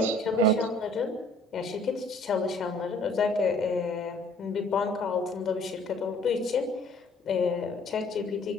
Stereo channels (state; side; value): normal; both; correlation 0.57